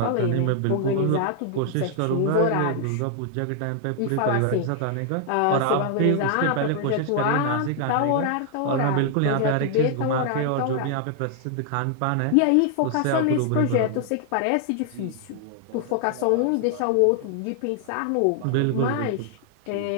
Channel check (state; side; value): different; both; correlation 0.00